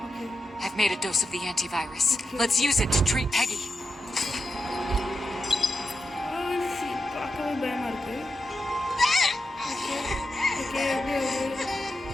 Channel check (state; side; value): normal; both; correlation 0.88